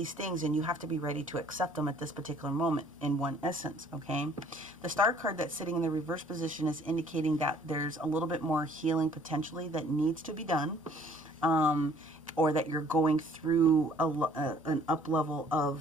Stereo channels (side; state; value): both; normal; correlation 0.57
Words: things, and you have to be ready to accept them at this particular moment in one essence, okay? The Star card that's sitting in the reverse position is indicating that there's a little bit more healing potentially that needs to be done. Or that you're going through an up level